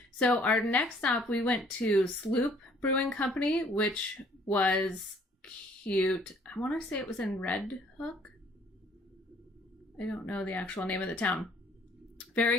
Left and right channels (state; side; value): normal; both; correlation 0.59